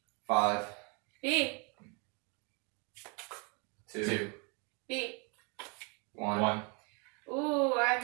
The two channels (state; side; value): quieter; left; 33.0 dB